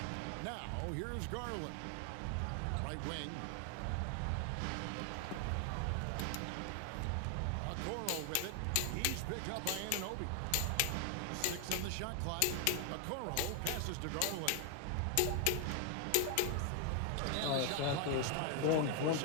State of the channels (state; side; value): different; both; correlation 0.00